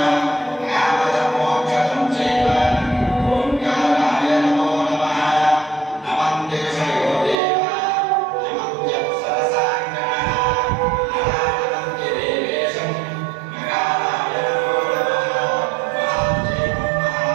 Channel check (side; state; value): left; drops out; at 7.4 s